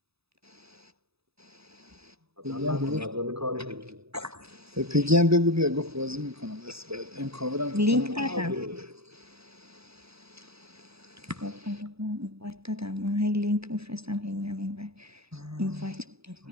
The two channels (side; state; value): left; late; 0.78 ms